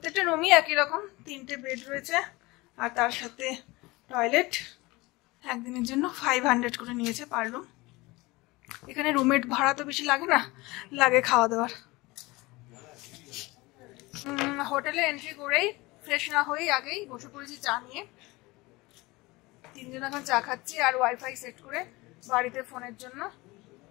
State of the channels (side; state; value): right; quieter; 22.1 dB